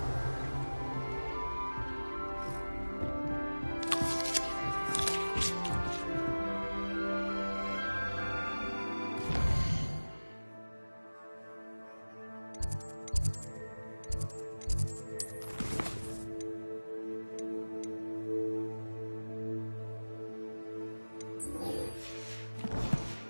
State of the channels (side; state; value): both; inverted; correlation -1.00